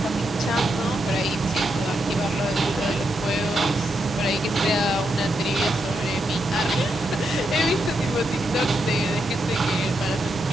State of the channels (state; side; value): normal; both; correlation 0.82